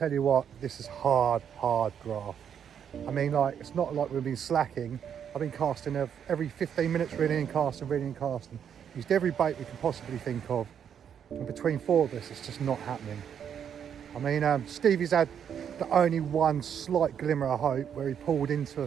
you what, this is hard graft. I mean, like, it's not like we've been slacking. I've been casting every 15 minutes, reeling and casting, reeling and casting. Used every bait we can possibly think of. And between 4 of us, it's just not happening. I mean, Stevie's had the only one slight glimmer of hope where he pulled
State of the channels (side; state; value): left; quieter; 8.4 dB